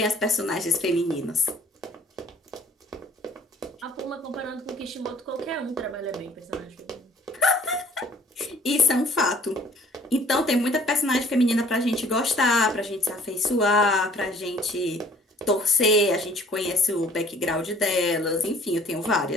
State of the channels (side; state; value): both; normal; correlation 0.55